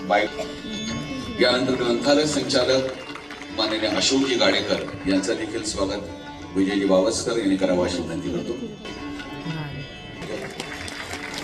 यानंतर ग्रंथालय संचालक माननीय अशोकजी गाडेकर यांचं देखील स्वागत विजयजी बावस्कर यांनी करावं अशी विनंती करतो.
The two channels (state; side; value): identical; both; correlation 1.00